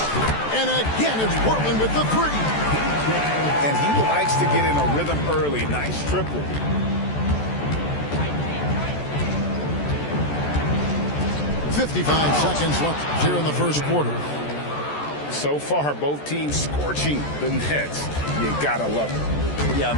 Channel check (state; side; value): late; right; 14 ms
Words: And again, it's Portland with the 3. And he likes to get in a rhythm early. Nice triple. .55 seconds left here in the first quarter. So far, both teams scorching the nets. You gotta love it. Yeah,